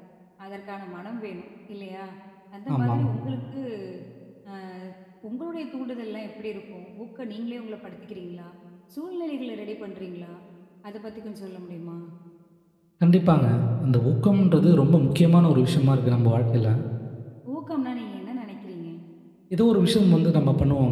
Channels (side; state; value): both; identical; correlation 1.00